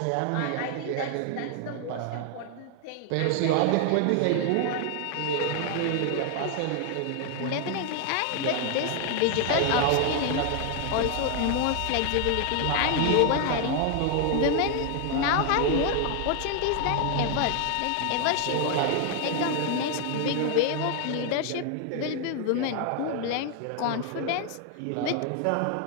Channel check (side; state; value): both; different; correlation 0.00